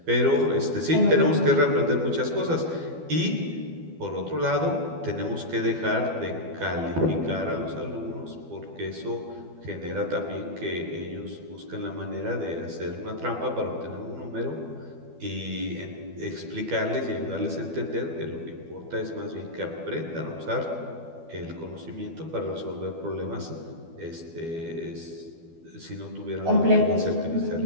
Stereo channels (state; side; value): late; left; 12 ms